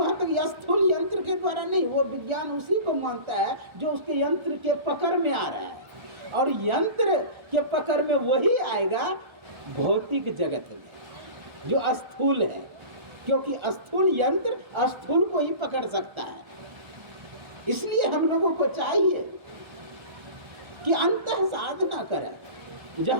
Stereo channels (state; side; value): late; left; 1.4 ms